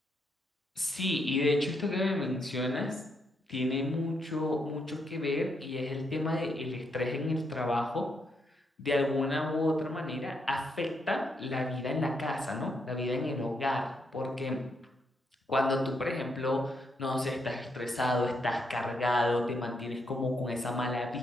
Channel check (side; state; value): both; normal; correlation 0.78